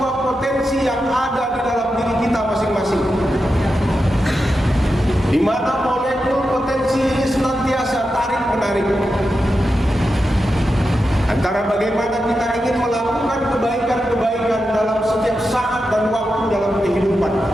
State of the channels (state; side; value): normal; both; correlation 0.89